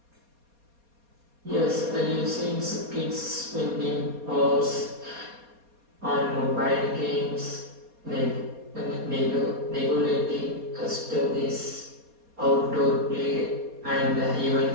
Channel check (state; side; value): late; left; 4.2 ms